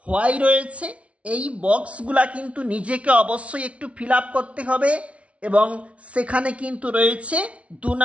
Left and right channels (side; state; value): left; late; 0.063 ms